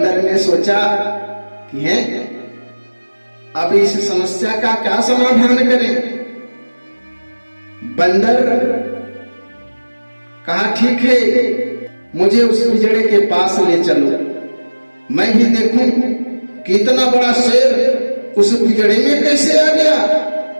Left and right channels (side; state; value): both; inverted; correlation -1.00